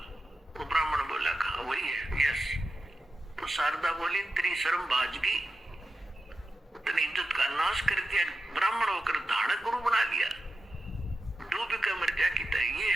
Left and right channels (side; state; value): both; normal; correlation 0.90